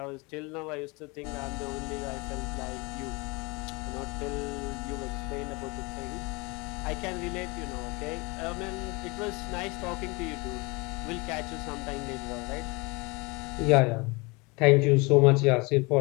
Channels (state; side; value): quieter; right; 26.7 dB